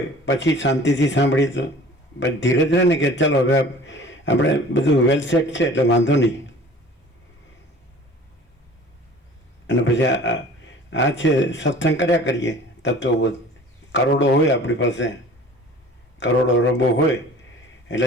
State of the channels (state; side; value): normal; both; correlation 0.45